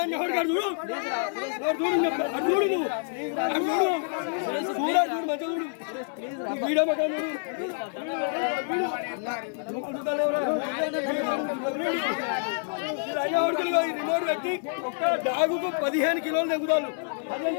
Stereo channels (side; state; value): right; silent; digital silence